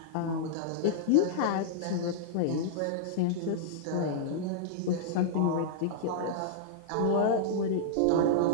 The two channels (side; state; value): both; different; correlation -0.02